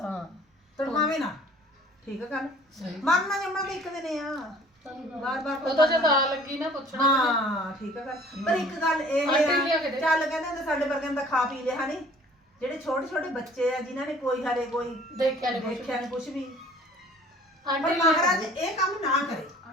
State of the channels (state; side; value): normal; both; correlation 0.51